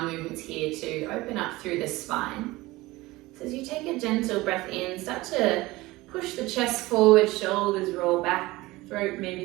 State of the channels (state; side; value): quieter; left; 19.9 dB